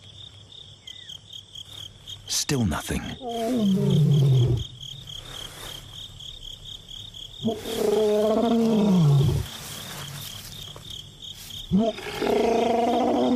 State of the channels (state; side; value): identical; both; correlation 1.00